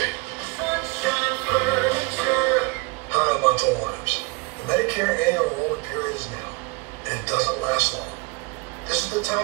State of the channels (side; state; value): left; quieter; 27.7 dB